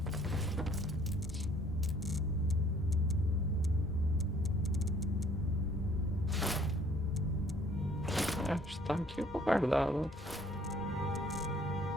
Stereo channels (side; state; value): both; normal; correlation 0.59